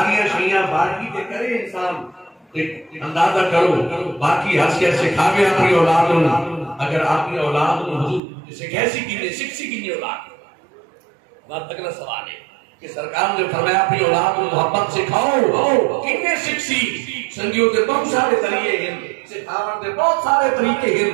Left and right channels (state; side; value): drops out; left; at 8.2 s